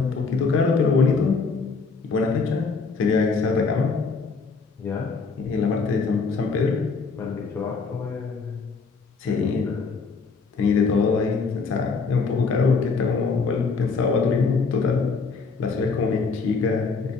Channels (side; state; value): right; quieter; 4.6 dB